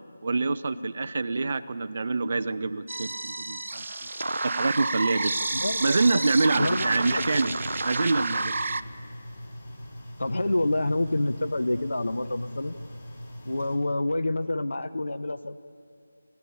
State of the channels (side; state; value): both; inverted; correlation -0.94